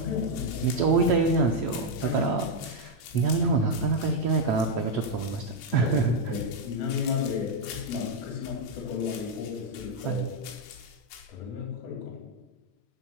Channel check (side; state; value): right; late; 8.8 ms